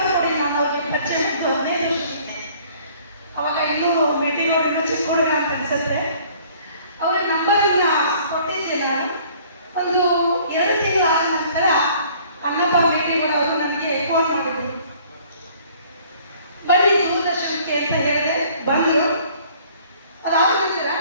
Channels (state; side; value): inverted; both; correlation -0.56